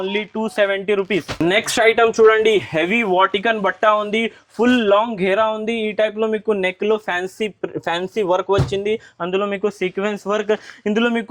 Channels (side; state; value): both; identical; correlation 1.00